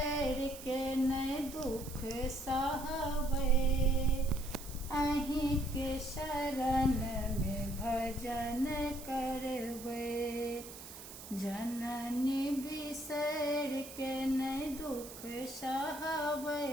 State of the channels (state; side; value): noise; right; hiss, 13 dB below the sound